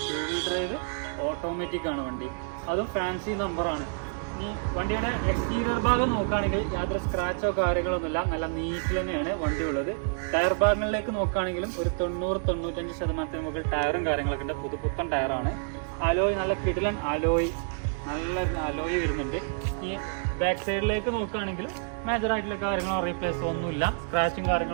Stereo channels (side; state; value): left; silent; digital silence